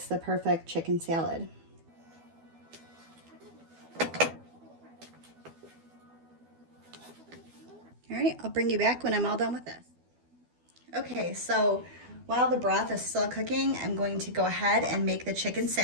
the perfect chicken salad. All right, I'll bring you back when I'm all done with this. Okay, so while the broth is still cooking, I'm going to go ahead and make the chicken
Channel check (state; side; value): late; left; 12 ms